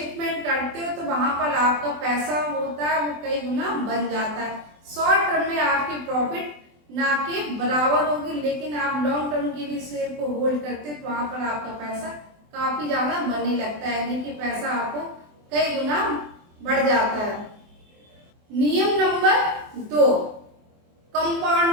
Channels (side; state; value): left; late; 24 ms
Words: करते हो तो वहां पर आपका पैसा होता है वो कई गुना बन जाता है। शॉर्ट टर्म में आपकी प्रॉफिट ना के बराबर होगी, लेकिन आप लॉन्ग टर्म के लिए शेयर को होल्ड करते हो तो वहां पर आपका पैसा काफी ज्यादा बनने लगता है, यानी कि पैसा आपको कई गुना बढ़ जाता है। नियम नंबर 2,